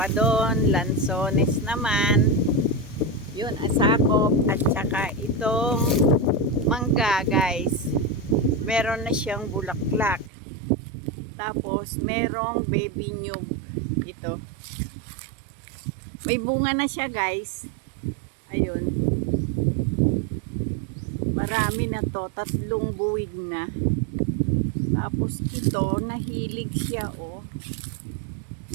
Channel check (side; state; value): left; drops out; at 10.3 s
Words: doon, lansones naman. Yun, asakop. At saka itong mangga guys. Meron na siyang bulaklak. Tapos merong baby nyug. Ito. May bunga na siya guys. Ayun. Marami na to. 3 buwig na. Tapos ito, nahilig siya oh.